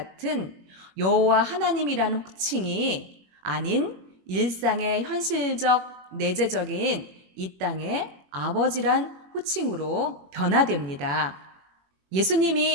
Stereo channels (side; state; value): left; late; 21 ms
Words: 여호와 하나님이라는 호칭이 아닌 일상의 현실적 내재적인 이 땅의 아버지란 호칭으로 변화됩니다.